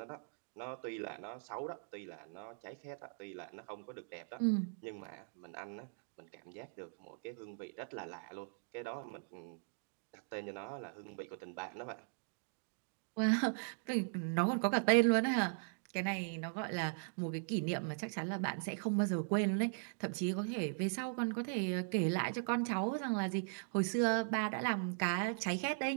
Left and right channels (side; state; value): left; silent; digital silence